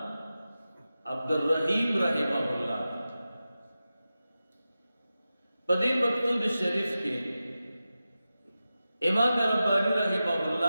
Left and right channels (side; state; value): both; inverted; correlation -0.93